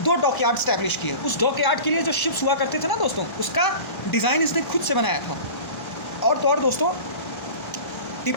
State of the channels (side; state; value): right; late; 1.3 ms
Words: 2 डॉकयार्ड स्टैब्लिश किए। उस डॉकयार्ड के लिए जो शिप्स हुआ करते थे ना दोस्तों, उसका डिज़ाइन इसने खुद से बनाया था। और तो और दोस्तों